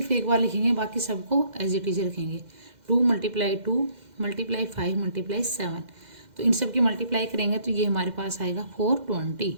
एक बार लिखेंगे, बाकी सबको एज इट इज रखेंगे. 2 मल्टीप्लाई 2 मल्टीप्लाई 5 मल्टीप्लाई 7. तो इन सब की मल्टीप्लाई करेंगे तो ये हमारे पास आएगा 420.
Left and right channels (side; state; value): left; late; 2.1 ms